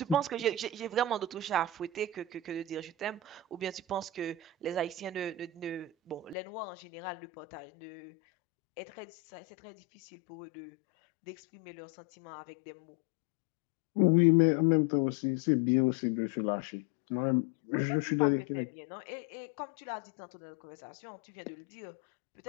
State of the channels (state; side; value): drops out; right; at 6.4 s